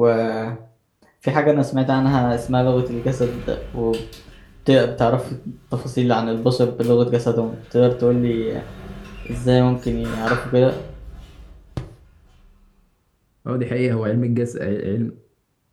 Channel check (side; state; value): both; identical; correlation 1.00